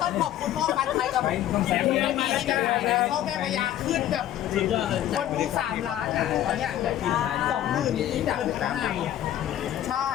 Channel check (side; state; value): right; quieter; 12.1 dB